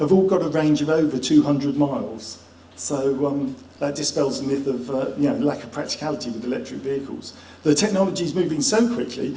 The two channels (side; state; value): both; identical; correlation 1.00